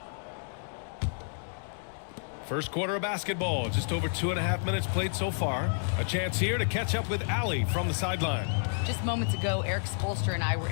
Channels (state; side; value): silent; right; digital silence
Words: First quarter of basketball, just over 2.5 minutes played so far. A chance here to catch up with Allie from the sideline. Just moments ago, Eric Spolster and I were